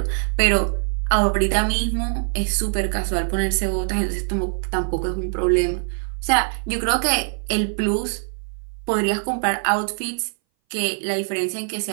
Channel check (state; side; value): silent; left; 60 dB below the other